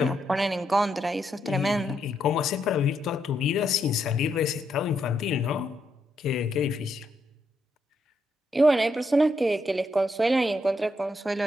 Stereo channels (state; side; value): normal; both; correlation 0.79